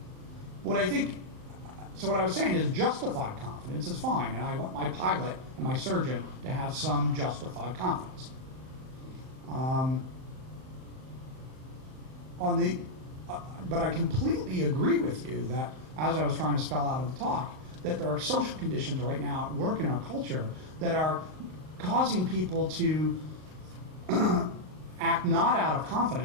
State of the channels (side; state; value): left; late; 38 ms